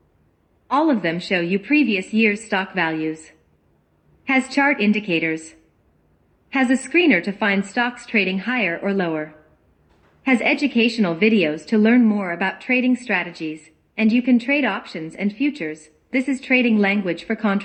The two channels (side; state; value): both; identical; correlation 1.00